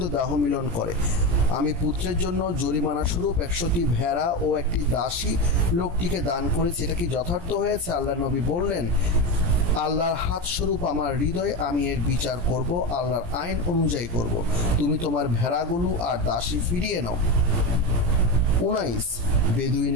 দাহ মিলন করে। আমি পুত্রের জন্য জরিমানা স্বরূপ 100টি ভেড়া ও একটি দাসী লোকটিকে দান করেছি। এটা কি যথার্থ হয়েছে? আল্লাহর নবী বললেন, আল্লাহর হাত স্বরূপ আমার হৃদয়, আমি এর বিচার করব, আল্লাহর আইন অনুযায়ী করব। তুমি তোমার ভেড়াগুলো আর দাসী ফিরিয়ে নাও। 19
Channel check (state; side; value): late; left; 17 ms